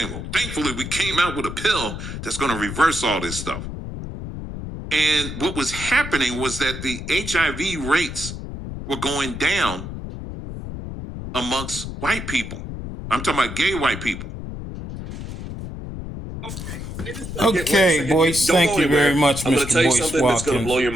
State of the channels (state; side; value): noise; left; rumble, 8 dB below the sound